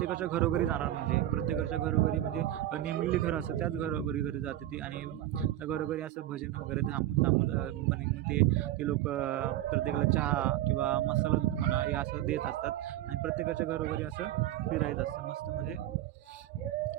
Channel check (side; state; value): left; quieter; 13.7 dB